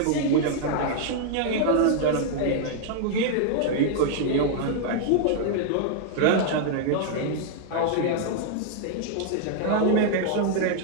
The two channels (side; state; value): both; different; correlation 0.00